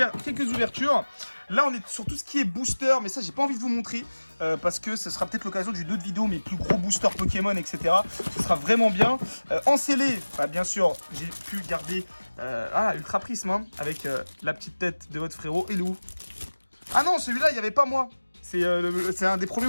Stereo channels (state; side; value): inverted; both; correlation -1.00